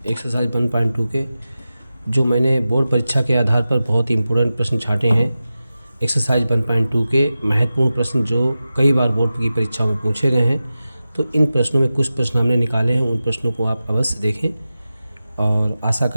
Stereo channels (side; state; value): both; inverted; correlation -0.94